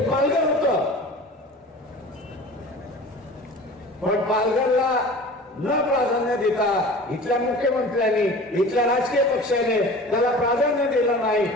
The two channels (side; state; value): both; normal; correlation 0.40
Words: पालघर होतं, पण पालघरला न प्राधान्य देता इथल्या मुख्यमंत्र्यांनी, इथल्या राजकीय पक्षाने त्याला प्राधान्य दिलं नाही,